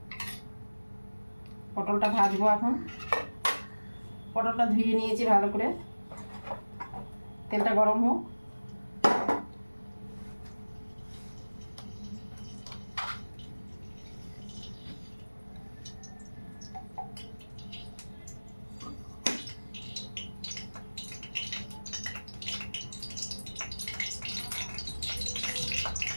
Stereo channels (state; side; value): inverted; both; correlation -1.00